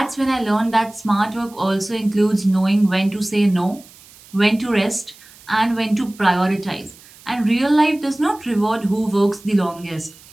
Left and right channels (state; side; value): noise; right; hiss, 23 dB below the sound